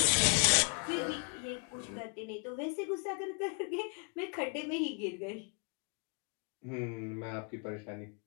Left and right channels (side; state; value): right; quieter; 39.9 dB